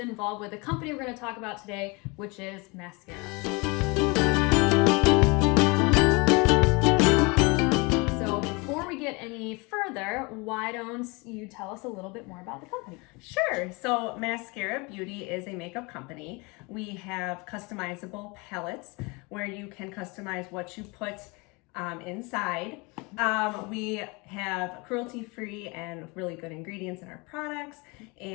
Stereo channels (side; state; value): right; quieter; 27.8 dB